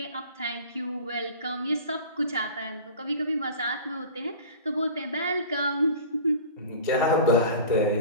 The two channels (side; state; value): both; inverted; correlation -0.39